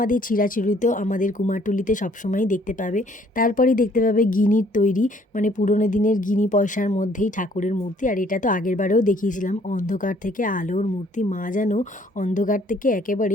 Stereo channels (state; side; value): normal; both; correlation 0.61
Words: চিরাচরিত আমাদের কুমারটুলিতে সবসময়ই দেখতে পাবে। তারপরেই দেখতে পাবে গিনির তৈরি, মানে পুরোনো দিনের গিনি পয়সার মধ্যেই ঠাকুরের মূর্তি। আর এটা তো আগেরবারেও দেখিয়েছিলাম, অন্ধকার থেকে আলোর মূর্তি, মা যেন অন্ধকার থেকে